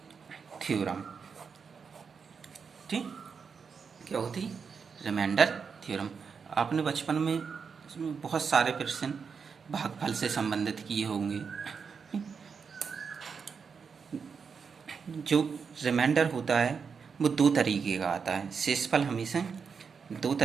थ्योरम। ठीक, क्या होती रिमाइंडर थ्योरम। आपने बचपन में इसमें बहुत सारे प्रश्न भागफल से संबंधित किए होंगे। जो रिमाइंडर होता है वो 2 तरीके का आता है। शेषफल हमेशा 2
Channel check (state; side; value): quieter; left; 5.9 dB